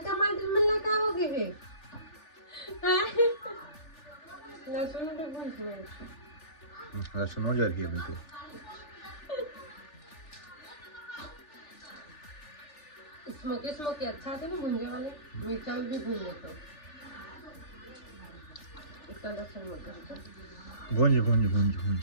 टमाटर में लगा हो गए लहसुन के भूंज में लहसुन हो जर गया बिल्कुल स्मोकी अच्छा थे ना भुंजे वाले मिर्चा भी भूंजे तो इतना लहसुन मत भूंज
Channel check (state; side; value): late; right; 3.4 ms